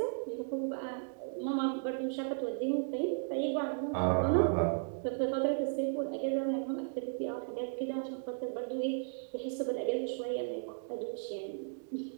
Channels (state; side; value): silent; left; digital silence